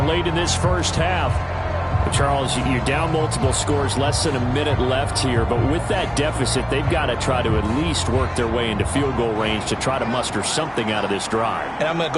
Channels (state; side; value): identical; both; correlation 1.00